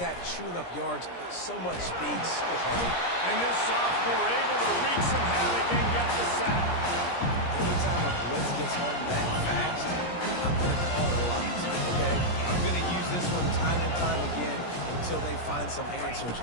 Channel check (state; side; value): late; right; 17 ms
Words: that, chewing up yards. So much speed, so hard. And this sophomore able to wreak some havoc and get the sack. Anytime a blitz gets home that fast, I'm going to call it a lot, okay? I'm going to use this one time and time again until they find some answers